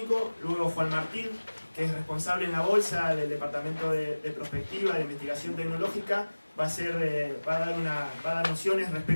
luego Juan Martín, que es responsable en la bolsa del Departamento de Prospectiva, de Investigación Tecnológica, va a dar nociones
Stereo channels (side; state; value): both; inverted; correlation -1.00